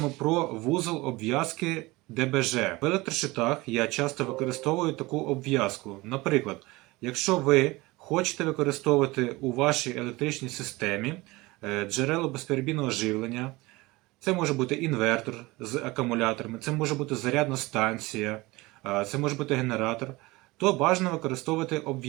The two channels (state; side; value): quieter; left; 21.7 dB